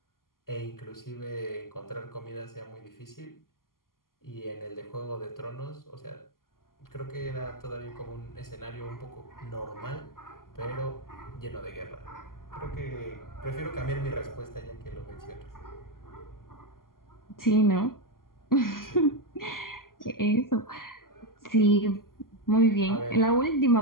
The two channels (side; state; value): right; late; 0.91 ms